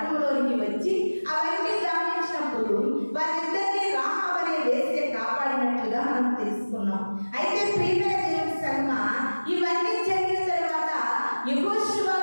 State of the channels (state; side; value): inverted; both; correlation -1.00